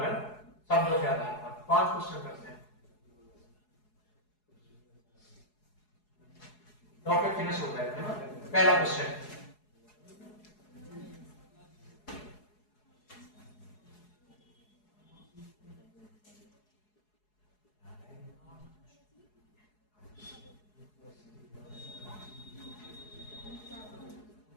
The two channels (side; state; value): right; late; 4.8 ms